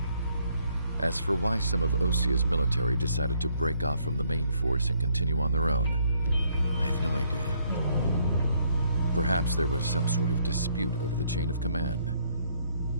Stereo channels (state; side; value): inverted; both; correlation -0.69